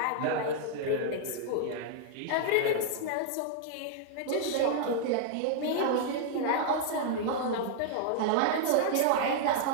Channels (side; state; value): both; different; correlation -0.01